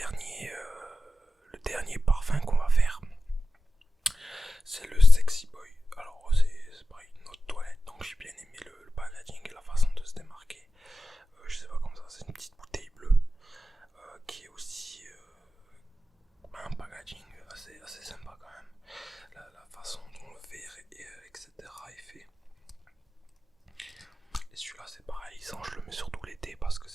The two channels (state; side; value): normal; both; correlation 0.93